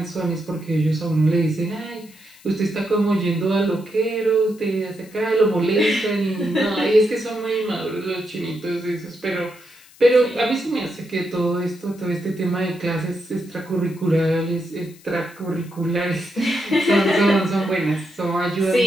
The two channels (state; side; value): noise; left; hiss, 25 dB below the sound